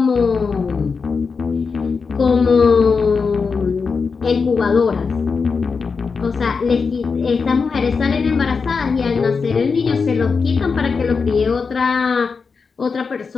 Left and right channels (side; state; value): right; quieter; 5.1 dB